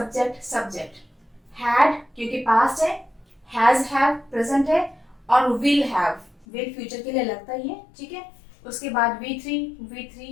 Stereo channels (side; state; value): right; drops out; at 6.5 s